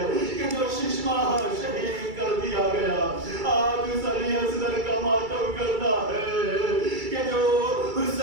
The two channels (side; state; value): left; late; 2.3 ms